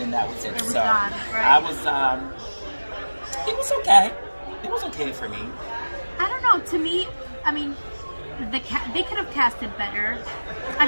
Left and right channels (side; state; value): both; inverted; correlation -1.00